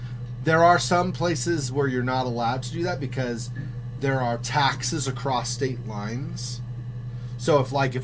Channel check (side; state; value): both; identical; correlation 1.00